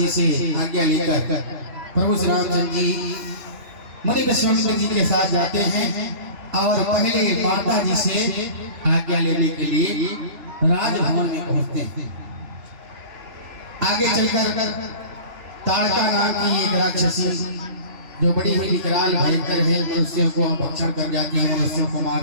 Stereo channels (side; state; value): left; late; 3.4 ms